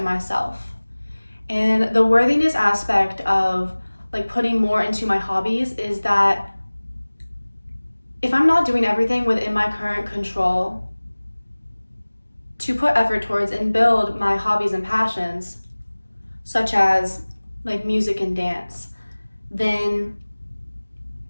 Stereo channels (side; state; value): both; inverted; correlation -1.00